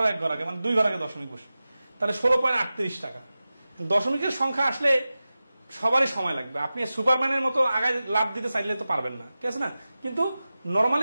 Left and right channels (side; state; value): both; inverted; correlation -0.95